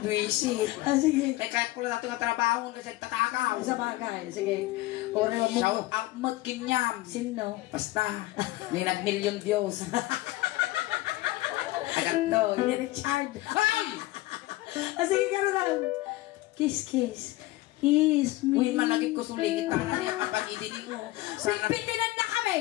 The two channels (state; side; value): quieter; right; 18.4 dB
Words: Duisit. Sige. Kaya ko lang dati nga trabaho kasi tatakaw. Sa bagay. Sige. Ore mo. Shout out mo't kinyam. Sino? Basta. May nag-million Diyos. Agad to. Richard. Ay! Sige, gano'n lang. Kiss, kiss. Kiss me. Uy, malagip ko suligit na niya kapag idinig mo. Sana Bitinan na